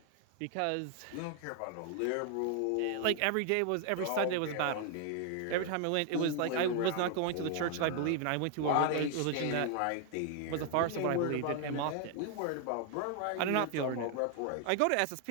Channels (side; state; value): both; different; correlation 0.00